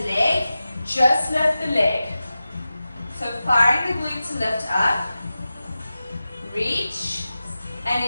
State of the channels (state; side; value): inverted; both; correlation -0.94